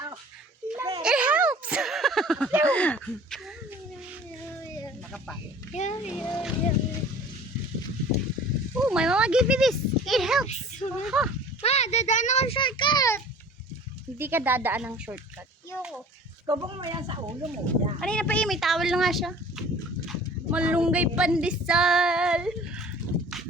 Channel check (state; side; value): normal; both; correlation 0.46